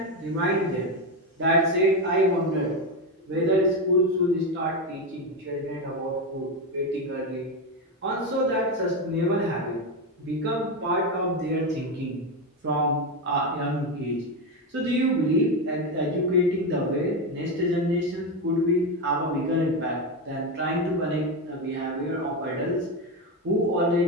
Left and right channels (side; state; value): both; normal; correlation 0.12